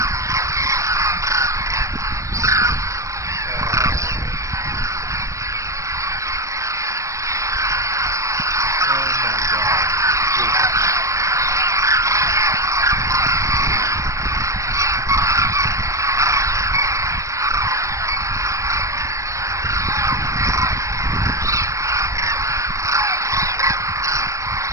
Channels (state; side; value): late; left; 0.15 ms